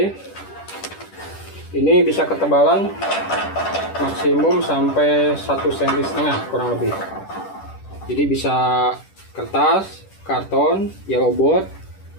ini bisa ketebalan maksimum sampai 1,5 cm kurang lebih. Jadi bisa kertas, karton, yellow board,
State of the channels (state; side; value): late; right; 10 ms